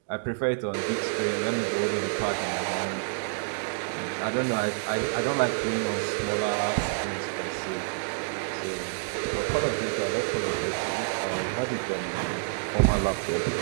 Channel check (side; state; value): left; silent; digital silence